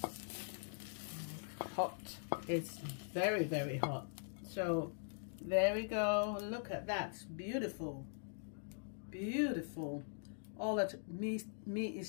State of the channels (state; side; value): silent; right; digital silence